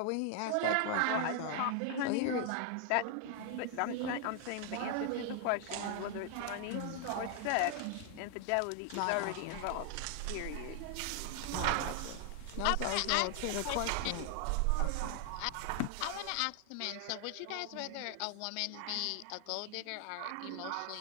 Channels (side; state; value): both; different; correlation 0.00